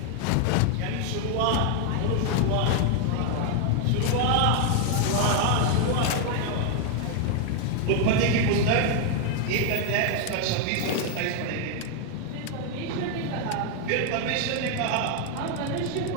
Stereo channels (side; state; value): both; different; correlation 0.00